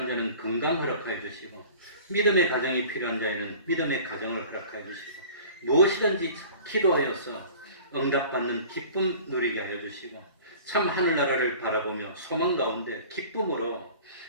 자는 건강 허락하여 주시고 믿음의 가정이 필요한 자에는 믿음의 가정을 허락하여 주시고 무엇이든지 기도하여서 응답받는 기쁨 누리게 하여 주시고 참 하늘나라를 바라보며 소망 가운데 기쁨으로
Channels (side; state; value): both; inverted; correlation -0.44